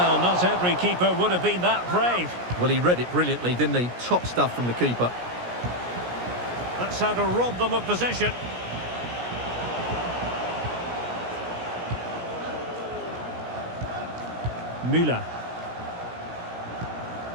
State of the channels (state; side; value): late; left; 17 ms